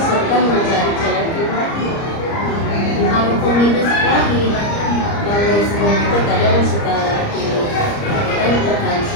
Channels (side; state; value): right; late; 30 ms